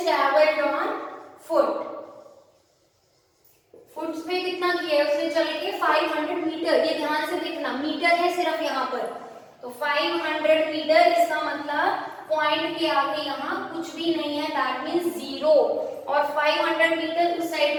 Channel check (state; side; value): identical; both; correlation 1.00